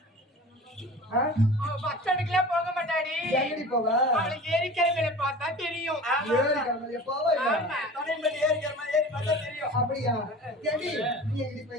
பஸ் ஸ்டாண்டுக்குலாம் போக மாட்டாடி. எங்கடி போவ? அவளுக்கு ஏரிக்கிழமையில பார்த்தா தெரியும். ஏரிக்கிழமையில போவ? ஏரி பார்த்தா தெரியும். அப்படியா? ஏண்டி நீ எங்கடி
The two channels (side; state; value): both; normal; correlation 0.39